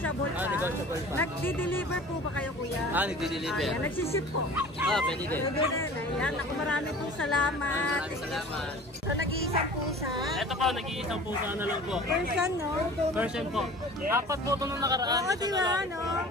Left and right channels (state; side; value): normal; both; correlation 0.43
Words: pa? Negotiable pa. Nagdi-deliver po ba kayo, kuya? Nagdi-deliver. Ayan, nagsiship po. Pwede din. Pwede rin. Ayan, ako marami pong salamat. Maraming salamat. So nag-iisang pusa. Ito po, nag-iisang pusa na lang po. Persian, no? Version po. 4 po ito nung nakaraan. Oo, Ito di na ba, lang. no?